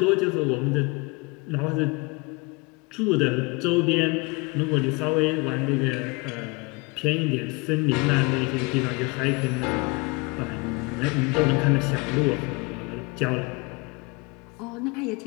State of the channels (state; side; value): quieter; right; 27.7 dB